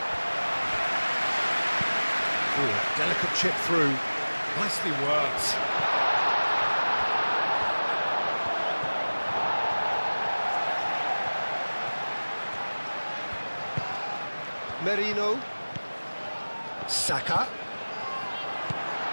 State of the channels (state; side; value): inverted; both; correlation -1.00